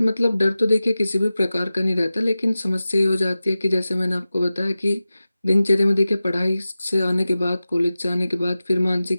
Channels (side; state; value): both; inverted; correlation -0.95